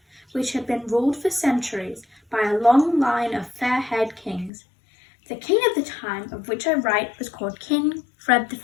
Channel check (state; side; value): drops out; right; at 4.5 s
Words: which had been ruled for centuries by a long line of fair-haired kings. The king at the time of which I write was called King Fred the